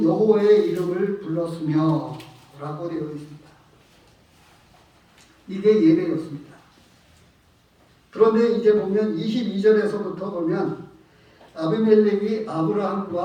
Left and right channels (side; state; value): both; identical; correlation 1.00